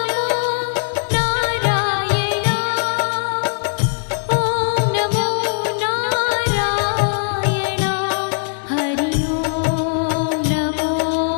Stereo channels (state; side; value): silent; right; 66 dB below the other